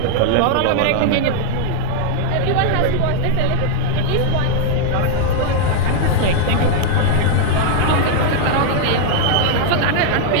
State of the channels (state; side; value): different; both; correlation 0.00